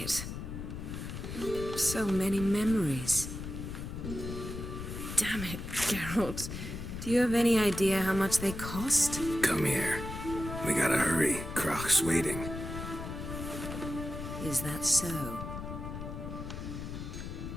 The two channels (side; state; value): left; noise; rumble, 7 dB below the sound